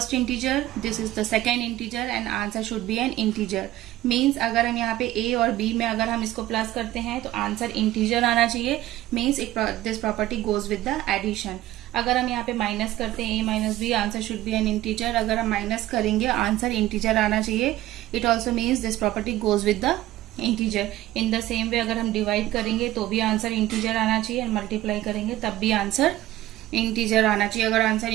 integer, this is the second integer and answer should be an integer. Means अगर हम यहाँ पे a और b में अगर हम इसको plus करते हैं तो आंसर इंटीजर आना चाहिए. Means this property goes with the addition. अगर हम यहाँ पे माइनस करते हैं a minus b, answer should be an integer. अगर हम माइनस करेंगे आंसर इंटीजर आना चाहिए. It also means this property goes with the integer. In the same way अगर हम डिवाइड करेंगे तो भी आंसर इंटीजर आना चाहिए, और मल्टीप्लाई करेंगे तब भी आंसर इंटीजर आना चाहिए. अगर आंसर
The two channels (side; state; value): left; quieter; 15.1 dB